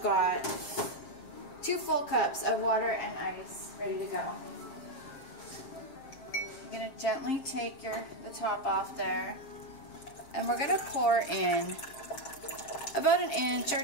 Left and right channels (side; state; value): right; late; 7.5 ms